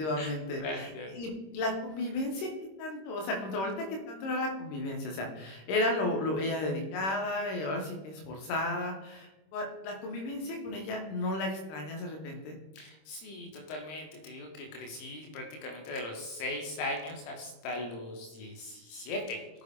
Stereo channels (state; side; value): late; right; 26 ms